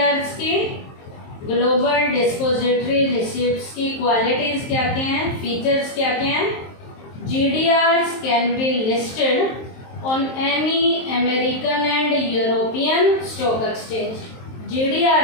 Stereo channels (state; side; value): late; right; 23 ms